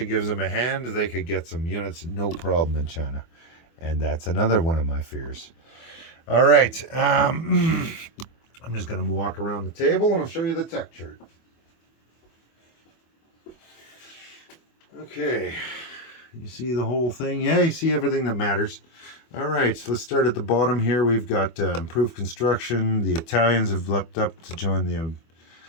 gives them a hand, they could get some units, no problem in China. And that's another one of my fears. All right. I'm just going to walk around the table and I'll show you the tech chart. Okay. You see the whole thing? Yeah, you see everything that matters. All right, so let's start at the bottom here. We've got improved construction. The Italians have leapt up to join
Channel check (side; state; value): right; late; 24 ms